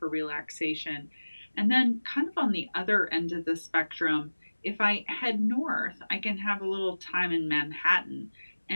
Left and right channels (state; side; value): inverted; both; correlation -1.00